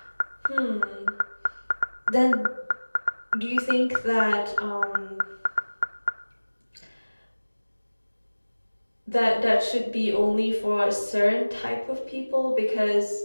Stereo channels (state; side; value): inverted; both; correlation -1.00